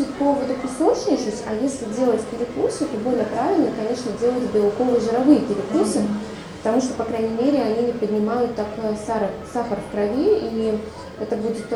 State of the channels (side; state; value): both; identical; correlation 1.00